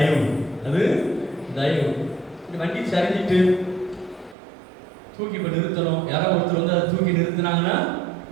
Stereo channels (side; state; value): left; drops out; at 4.4 s